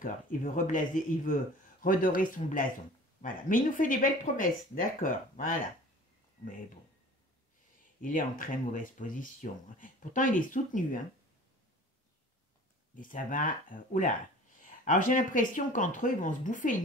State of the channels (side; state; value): both; normal; correlation 0.44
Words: il veut redorer son blason. Voilà, mais il nous fait des belles promesses, d'accord, voilà. Mais bon, il est en très mauvaise position. Pourtant, il est soutenu, hein. Et ça va... oula. Alors, j'ai l'impression qu'entre eux, ils vont se bouffer